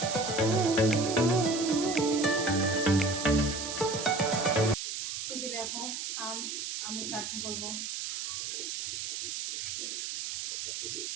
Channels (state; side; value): noise; right; hiss, 4 dB below the sound